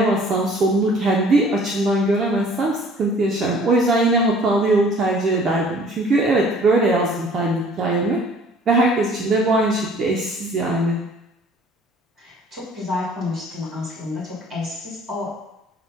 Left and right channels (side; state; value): both; normal; correlation 0.53